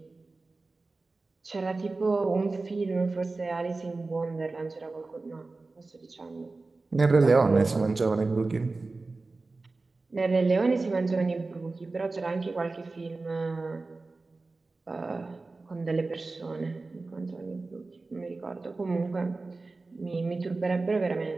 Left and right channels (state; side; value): quieter; left; 3.6 dB